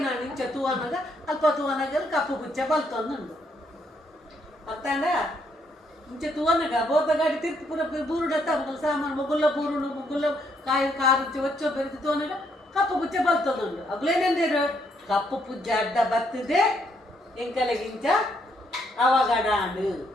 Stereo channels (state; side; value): normal; both; correlation 0.73